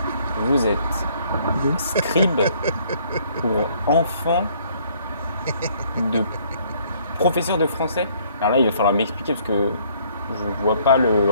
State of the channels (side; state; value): both; inverted; correlation -0.63